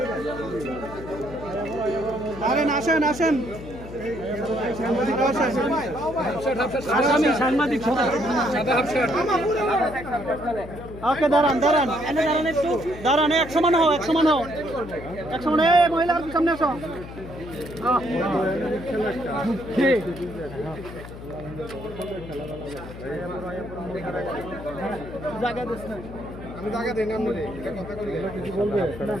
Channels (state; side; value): noise; left; hum, 13 dB below the sound